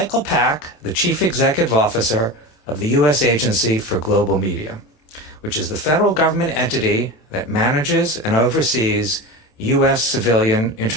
Pack, the Chief Executive Officer of the U.S. Agency for Global Media, which is the federal government entity that manages and oversees U.S. civilian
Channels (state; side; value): late; right; 27 ms